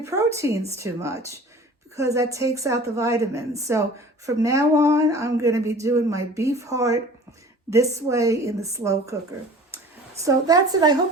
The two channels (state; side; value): normal; both; correlation 0.44